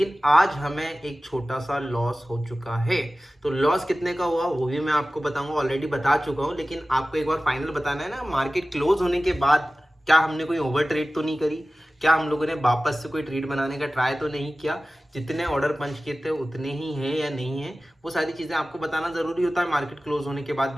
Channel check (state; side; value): normal; both; correlation 0.96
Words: आज हमें एक छोटा सा लॉस हो चुका है। तो लॉस कितने का हुआ वो भी मैं आपको बताऊंगा, ऑलरेडी बता चुका हूँ। लेकिन आपको एक बार फाइनल बताना है ना, मार्केट क्लोज होने के बाद क्या हमने कोई ओवर ट्रेड तो नहीं करी? क्या हम लोगों ने वापस से कोई ट्रेड बनाने का ट्राई तो नहीं किया? जितने ऑर्डर पंच किए थे उतने ही हैं या नहीं है, वो सारी चीज़ें आपको बताना ज़रूरी होता है मार्केट क्लोज होने के बाद,